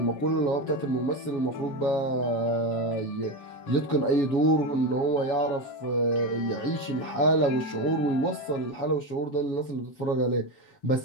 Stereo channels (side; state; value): right; late; 7.2 ms